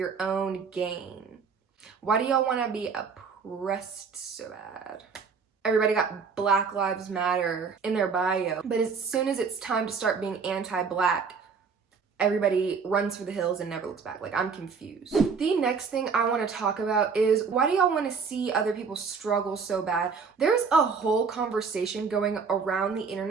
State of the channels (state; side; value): quieter; left; 5.5 dB